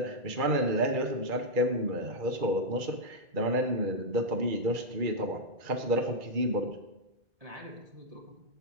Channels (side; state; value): left; late; 2.3 ms